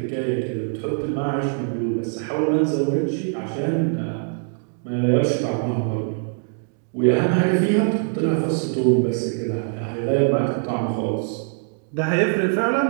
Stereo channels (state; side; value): silent; left; 58 dB below the other